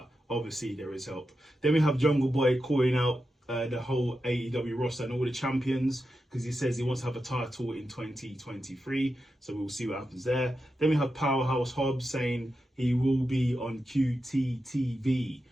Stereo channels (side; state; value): both; normal; correlation 0.89